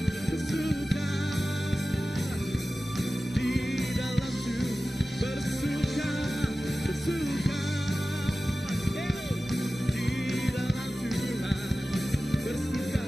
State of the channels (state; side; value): normal; both; correlation 0.95